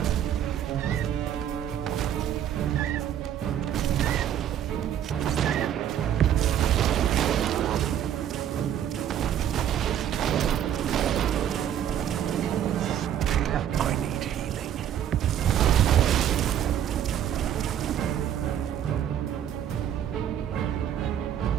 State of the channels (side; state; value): left; quieter; 10.2 dB